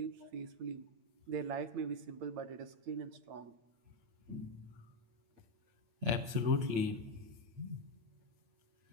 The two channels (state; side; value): late; left; 8.8 ms